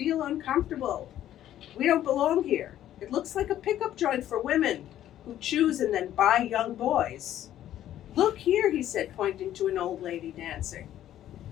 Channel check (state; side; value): quieter; right; 12.1 dB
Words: uncomfortable. We don't belong here. It looks like a pickup joint for women who choose and then buy young boys." "Look here," he said, pointing to an old lady dancing.